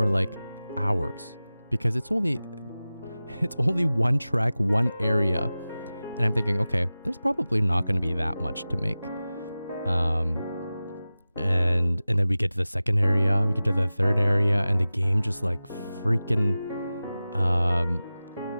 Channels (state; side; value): inverted; both; correlation -0.96